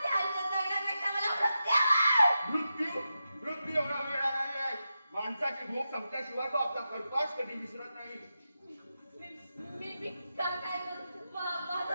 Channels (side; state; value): both; inverted; correlation -0.89